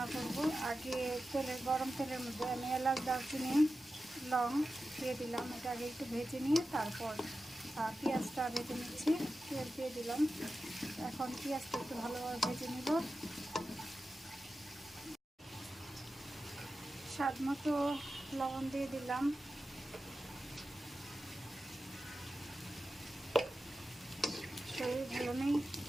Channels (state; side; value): normal; both; correlation 0.92